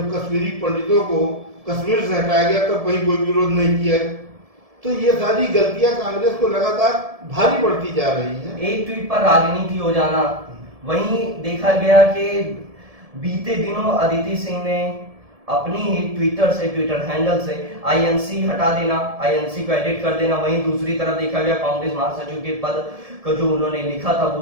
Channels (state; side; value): late; left; 1.7 ms